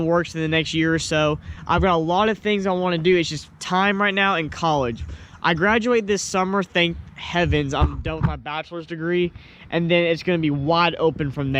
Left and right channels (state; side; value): identical; both; correlation 1.00